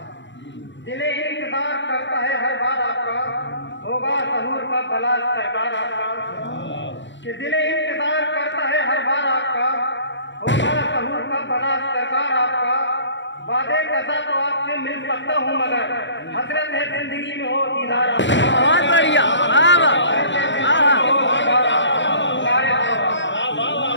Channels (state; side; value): late; right; 0.53 ms